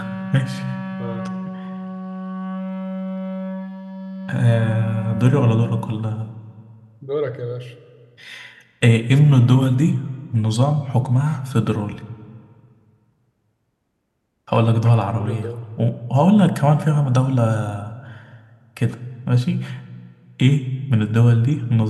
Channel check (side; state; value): both; identical; correlation 1.00